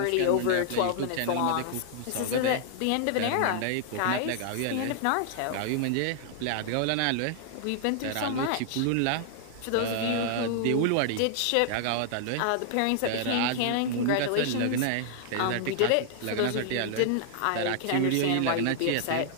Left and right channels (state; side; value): different; both; correlation -0.01